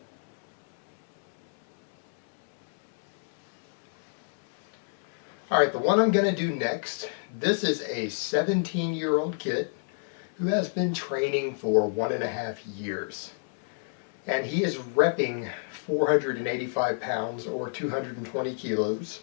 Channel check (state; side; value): silent; right; 59 dB below the other